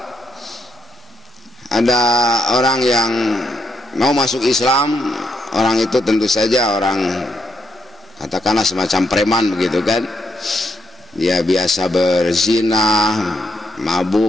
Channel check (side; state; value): both; normal; correlation 0.78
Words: ada orang yang mau masuk Islam. Orang itu tentu saja orang katakanlah semacam preman begitu kan. Dia biasa berzina,